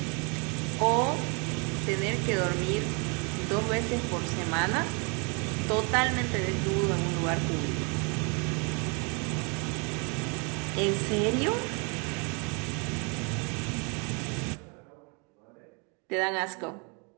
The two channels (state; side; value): quieter; left; 33.6 dB